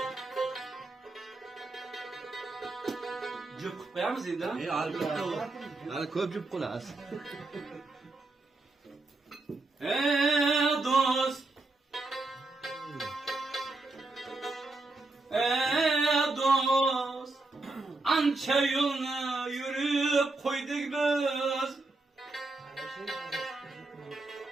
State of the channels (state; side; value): quieter; left; 3.2 dB